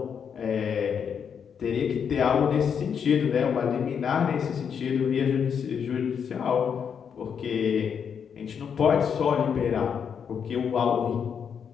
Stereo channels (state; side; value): quieter; right; 7.2 dB